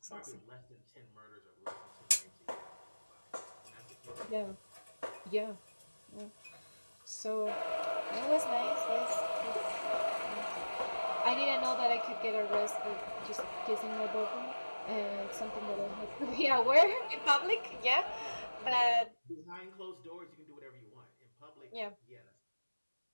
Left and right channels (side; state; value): both; inverted; correlation -1.00